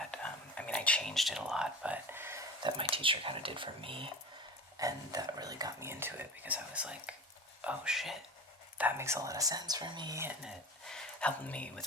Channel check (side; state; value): both; normal; correlation 0.34